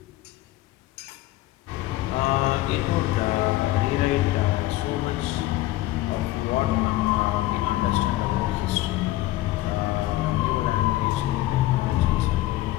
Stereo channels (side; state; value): right; quieter; 16.4 dB